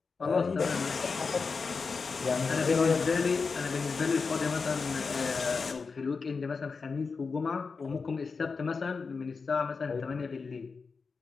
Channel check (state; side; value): quieter; right; 4.8 dB